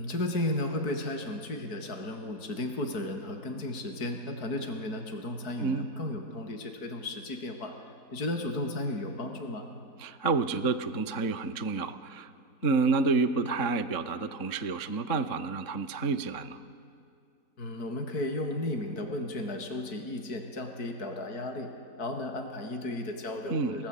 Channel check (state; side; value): late; right; 4.6 ms